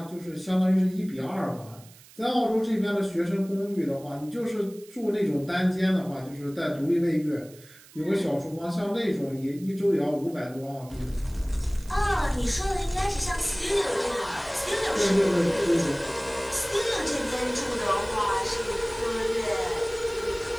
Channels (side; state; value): right; noise; hiss, 23 dB below the sound